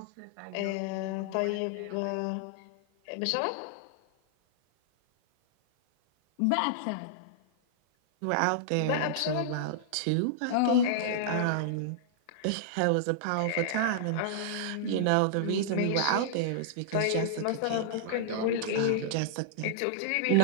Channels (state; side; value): different; both; correlation -0.02